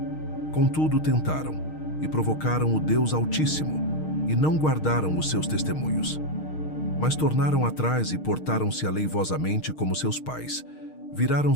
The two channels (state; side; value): late; right; 6.5 ms